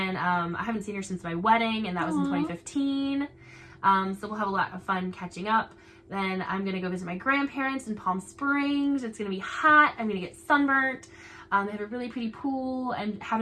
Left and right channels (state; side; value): identical; both; correlation 1.00